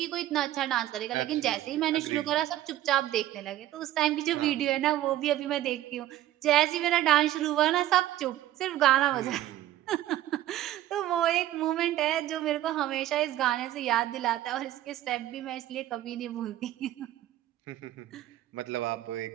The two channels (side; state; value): left; quieter; 13.5 dB